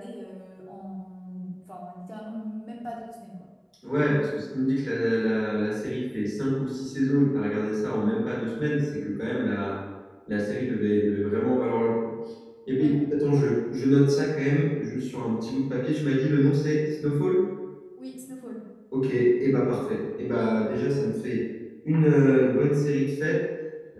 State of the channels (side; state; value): both; identical; correlation 1.00